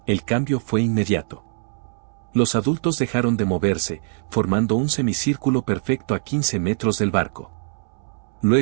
el cambio fue inmediato. Los adultos dejaron de moverse, formando un semicírculo perfecto a 15 metros del barco.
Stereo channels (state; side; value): silent; left; 64 dB below the other